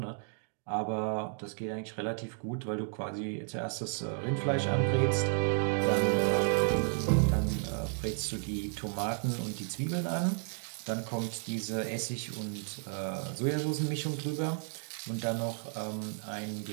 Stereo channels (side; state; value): left; silent; 56 dB below the other